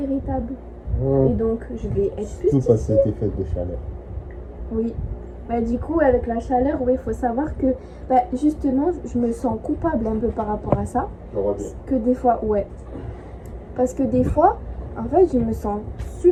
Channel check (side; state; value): both; identical; correlation 1.00